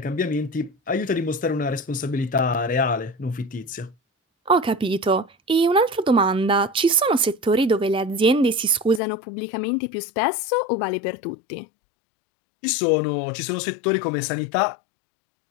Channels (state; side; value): drops out; right; at 9.0 s